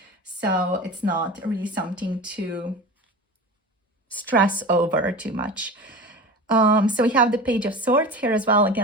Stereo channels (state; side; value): normal; both; correlation 0.32